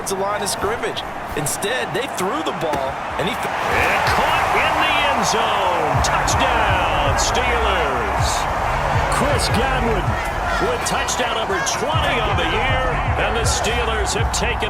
the line of scrimmage. Instead, they threw the ball. And caught in the end zone. Touchdown, Steelers. Chris Godwin with touchdown number 20 on the year, and the Steelers have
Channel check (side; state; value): both; identical; correlation 1.00